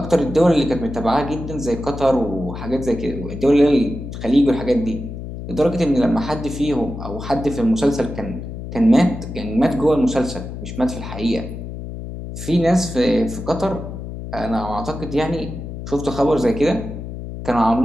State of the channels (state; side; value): noise; left; hum, 9 dB below the sound